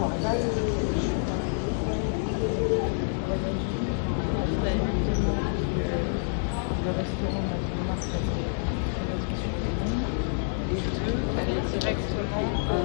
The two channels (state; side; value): silent; right; digital silence